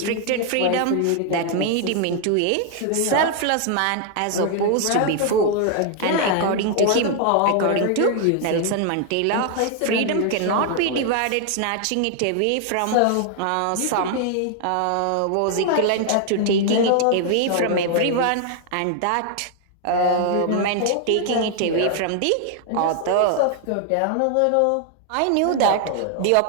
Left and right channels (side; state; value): both; different; correlation 0.00